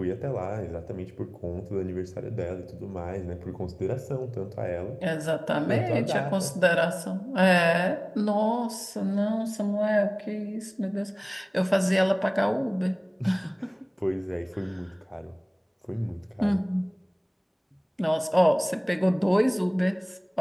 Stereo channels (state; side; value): identical; both; correlation 1.00